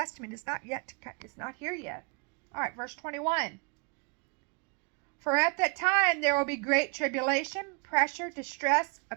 is not here yet. All right, verse 21. For at that time there will be great tribulation, pressure, distress,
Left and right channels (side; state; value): left; quieter; 34.4 dB